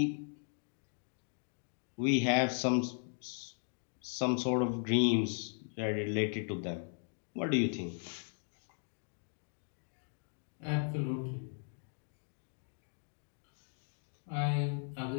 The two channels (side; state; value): right; silent; 53 dB below the other